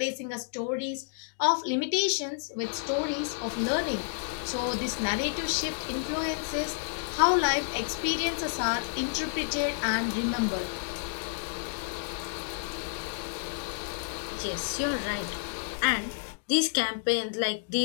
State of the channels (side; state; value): right; silent; digital silence